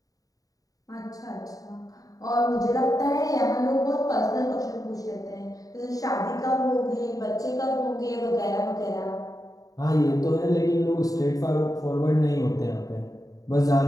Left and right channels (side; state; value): right; late; 0.17 ms